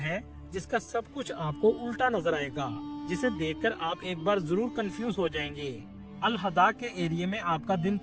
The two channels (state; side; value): identical; both; correlation 1.00